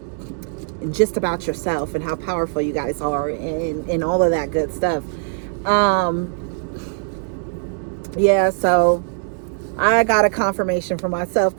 just about yourself and how powerful you guys are, and all of that good stuff. Yeah, so I got a confirmation for myself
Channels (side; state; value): left; silent; digital silence